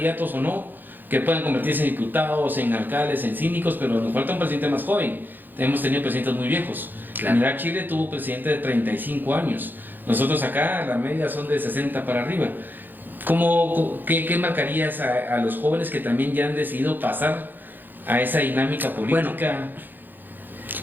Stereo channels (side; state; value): left; late; 0.089 ms